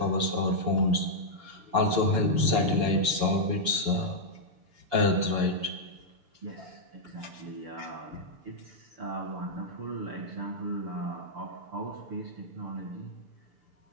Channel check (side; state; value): left; late; 6.9 ms